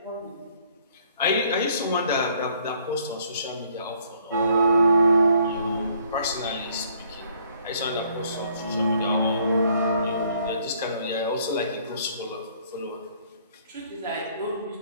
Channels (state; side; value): inverted; both; correlation -0.63